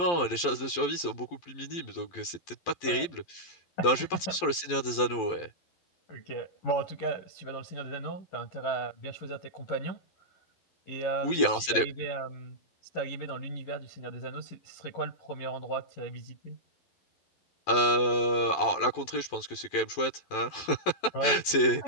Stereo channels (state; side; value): late; right; 11 ms